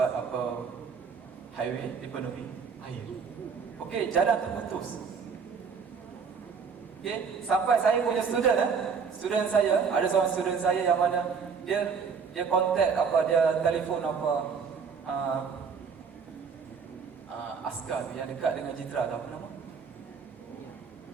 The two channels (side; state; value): left; quieter; 5.9 dB